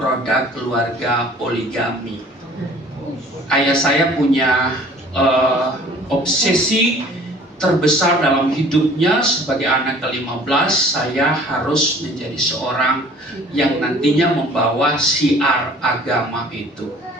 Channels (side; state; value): both; normal; correlation 0.51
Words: keluarga poligami. Ayah saya punya obsesi terbesar dalam hidupnya sebagai anak ke-15. Saya harus menjadi seorang yang nantinya membawa syiar agama itu.